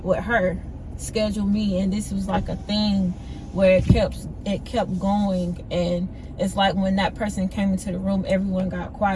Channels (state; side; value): identical; both; correlation 1.00